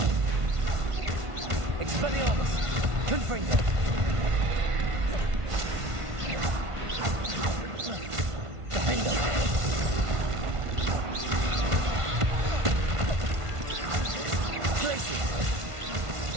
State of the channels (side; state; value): left; late; 1.5 ms